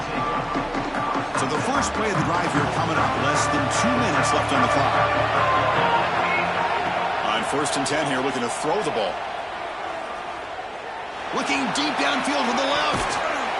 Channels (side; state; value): both; identical; correlation 1.00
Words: So the first play of the drive here coming up. Less than 2 minutes left on the clock. On 1st and 10 here, looking to throw the ball. Looking deep downfield to the left.